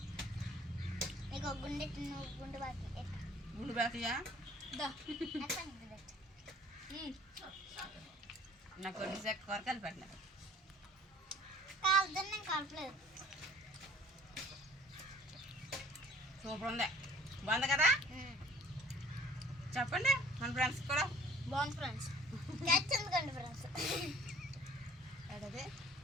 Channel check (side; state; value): both; normal; correlation 0.53